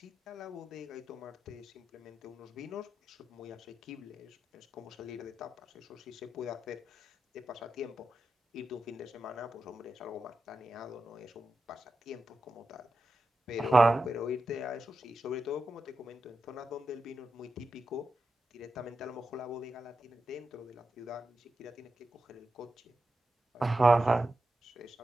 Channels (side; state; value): both; normal; correlation 0.90